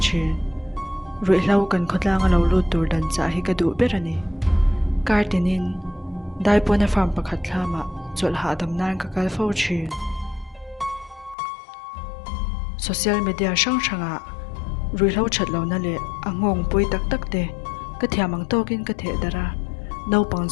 thin rui hlo kan khotlang lo lu tur dan cha hi ka du berani kartinin daipona farm pakhat thlama chol ha dam nan ka kal fo thin social media sang sanga rui hlo that lo na le angong pui tak tak te ka thiamang tokin ka the dara no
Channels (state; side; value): drops out; right; at 11.4 s